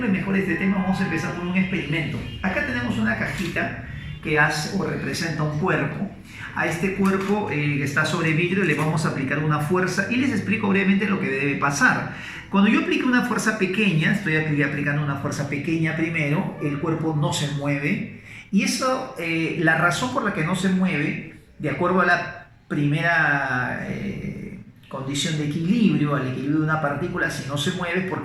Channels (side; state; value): both; identical; correlation 1.00